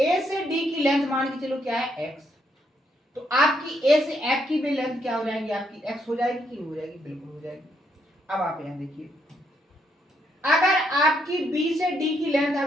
से डी की लेंथ मान के चलो क्या है x, तो आपकी ए से एफ की भी लेंथ क्या हो जाएगी आपकी x हो जाएगी कि नहीं हो जाएगी, बिल्कुल हो जाएगी। अब आप यहां देखिए, अगर आपकी बी से डी की लेंथ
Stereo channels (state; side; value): normal; both; correlation 0.76